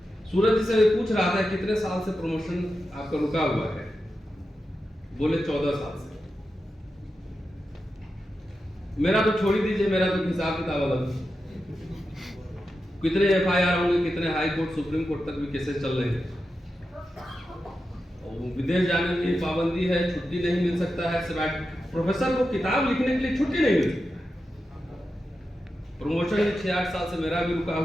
सूरज जी से पूछ रहा था कितने साल से प्रमोशन आपका रुका हुआ है, बोले 14 साल से। मेरा तो छोड़ ही दीजिए, मेरा तो हिसाब किताब अलग। कितने एफआईआर होंगे, कितने हाई कोर्ट, सुप्रीम कोर्ट तक भी केसेस चल रहे हैं, और विदेश जाने की पाबंदी है, छुट्टी नहीं मिल सकता है, प्रोफेसर को किताब लिखने के लिए छुट्टी नहीं मिलती। प्रमोशन 6-8 साल से मेरा भी रुका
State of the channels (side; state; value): both; normal; correlation 0.90